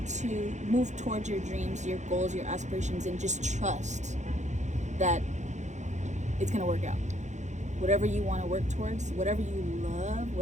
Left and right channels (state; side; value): late; left; 0.34 ms